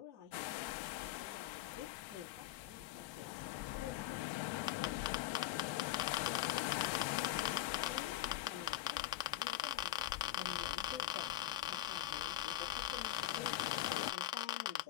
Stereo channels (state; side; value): quieter; right; 13.8 dB